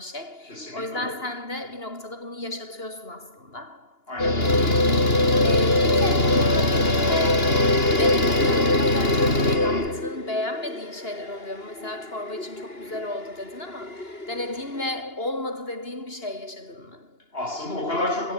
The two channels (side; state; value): right; late; 2.9 ms